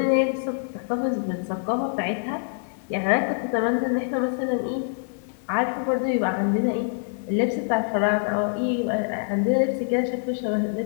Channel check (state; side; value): silent; right; digital silence